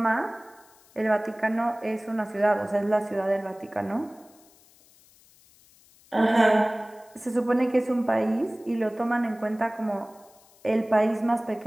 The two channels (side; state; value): left; noise; hiss, 28 dB below the sound